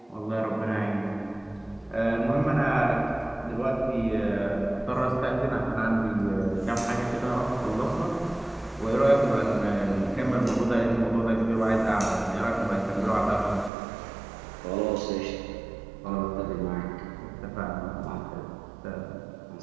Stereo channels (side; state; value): left; drops out; at 13.7 s